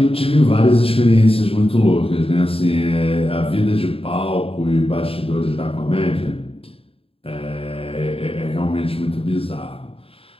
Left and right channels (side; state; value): right; late; 0.27 ms